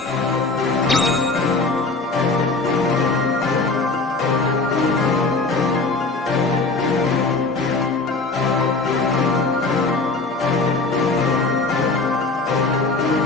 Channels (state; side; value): quieter; right; 3.6 dB